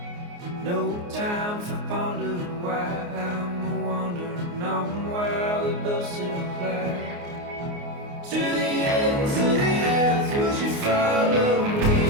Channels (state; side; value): late; left; 29 ms